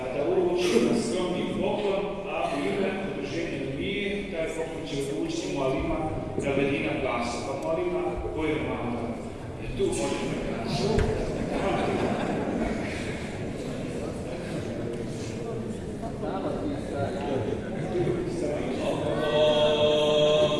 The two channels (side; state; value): both; identical; correlation 1.00